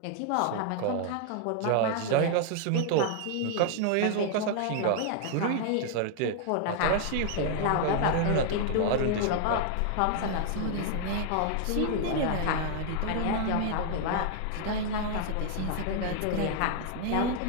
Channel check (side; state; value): both; different; correlation 0.00